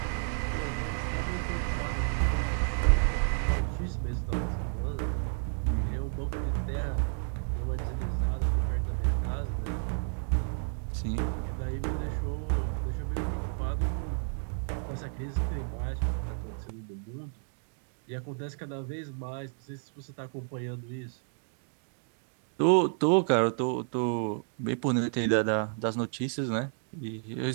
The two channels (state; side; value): silent; left; 57 dB below the other